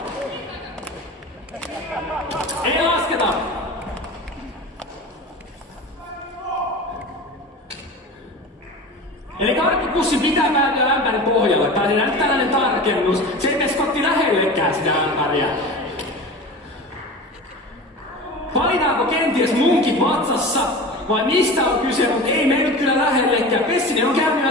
Ei lasketa! Eli karkkipussi pitää päätyä ämpärin pohjalle. Tai nyt tällainen tarkennus. Se ei mene Skotti lähellekään sitä ämpäriä. Valitaanko kenties munkit vatsassa? Vai mistä on kyse, mutta ei mene nyt kyllä lähellekään. Pessinen on käynyt jo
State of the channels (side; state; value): both; normal; correlation 0.32